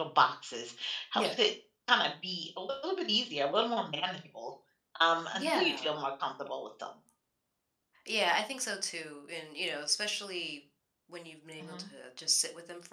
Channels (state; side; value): identical; both; correlation 1.00